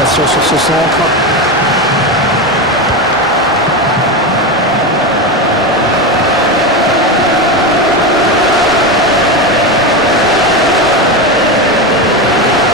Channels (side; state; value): both; normal; correlation 0.17